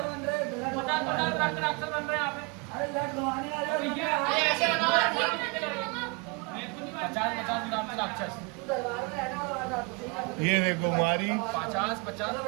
ये देखो हमारी 50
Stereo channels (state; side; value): quieter; left; 29.4 dB